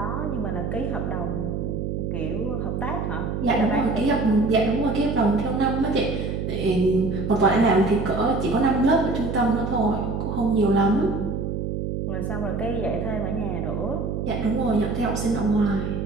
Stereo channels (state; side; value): noise; right; hum, 2 dB below the sound